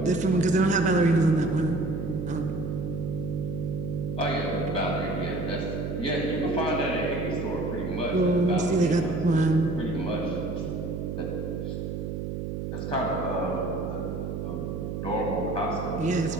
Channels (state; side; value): noise; right; hum, 4 dB below the sound